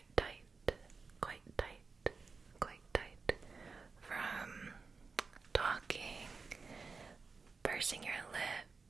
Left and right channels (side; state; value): left; quieter; 4.5 dB